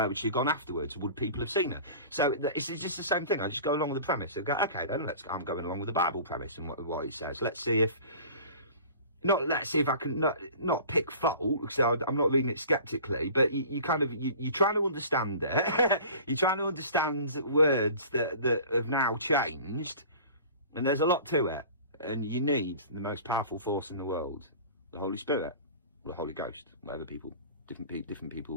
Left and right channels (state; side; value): inverted; both; correlation -0.42